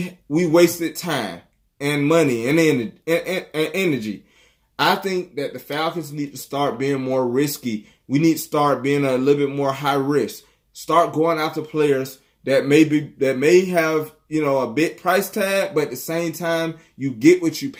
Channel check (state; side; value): identical; both; correlation 1.00